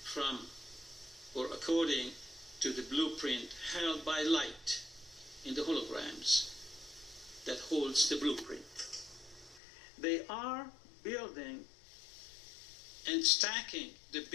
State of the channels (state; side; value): drops out; right; at 9.6 s